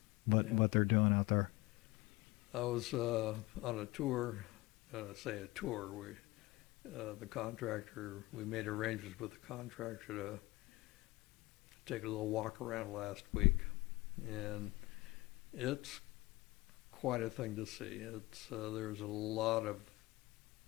What they're doing out there. I was on a tour. The contractor, we made arrangements with the contractor to take a little walk around last week, and it's quite a thing to see. There's a lot of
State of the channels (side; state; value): right; quieter; 21.0 dB